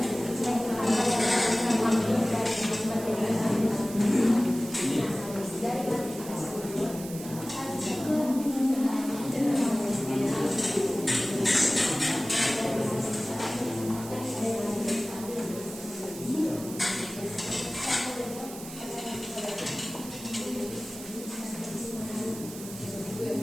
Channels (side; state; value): right; noise; hiss, 13 dB below the sound